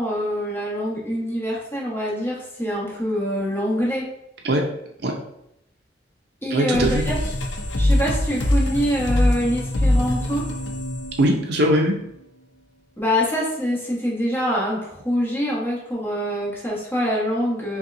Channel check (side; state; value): both; normal; correlation 0.71